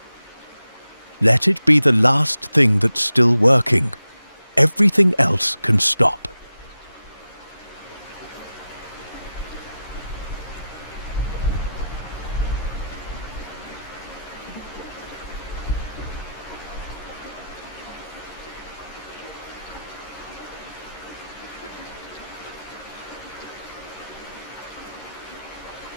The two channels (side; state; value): both; inverted; correlation -0.90